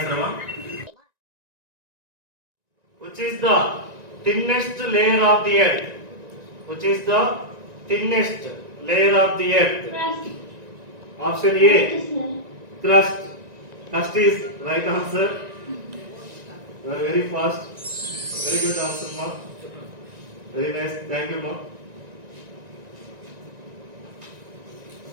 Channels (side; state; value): left; late; 1.9 ms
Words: one. Which is the thinnest layer of the earth? Which is the thinnest layer of the earth? Option A, crust. Crust is right answer. You are very fast. Very good answer, ma. Very nice. Thank you, ma.